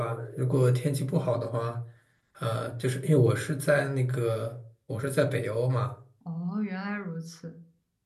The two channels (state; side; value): identical; both; correlation 1.00